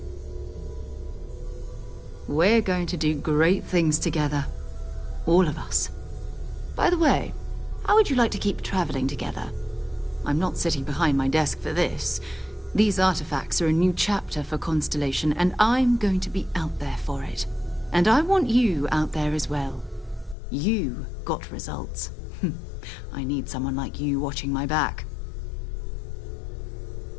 We're going to do great things together. All of us. By the way, how would you like to keep traveling together? I'm not sitting behind my desk for this. These artifacts are a new chapter for Constellation, and I'm going to be out there for it. And I want you out there as well. You got results. I need someone like you watching my back.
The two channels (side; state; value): right; drops out; at 20.4 s